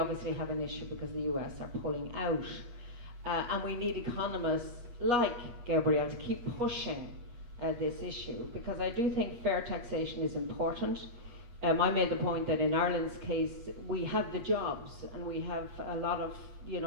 have an issue because the US are pulling out. And we need economists like Gabriel to keep pushing this issue, because I do think fair taxation is important. I made the point that in Ireland's case, we have the jobs and we have a lot of,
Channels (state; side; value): late; left; 8.3 ms